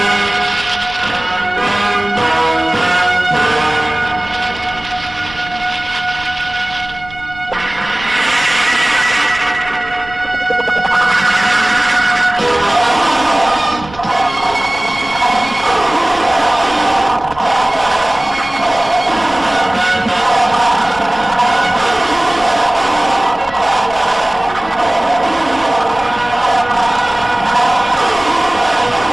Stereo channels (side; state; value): right; noise; rumble, 19 dB below the sound